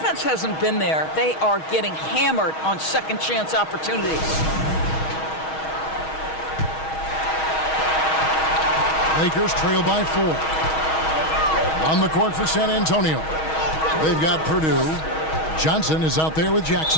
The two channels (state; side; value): late; right; 6.3 ms